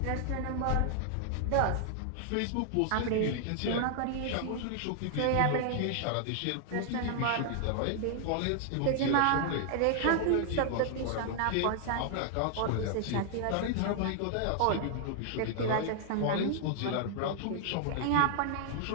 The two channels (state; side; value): different; both; correlation 0.00